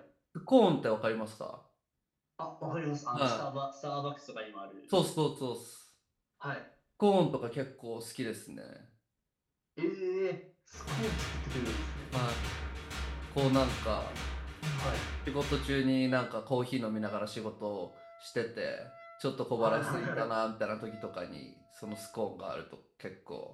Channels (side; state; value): both; identical; correlation 1.00